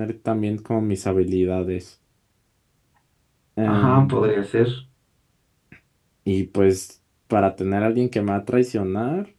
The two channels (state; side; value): identical; both; correlation 1.00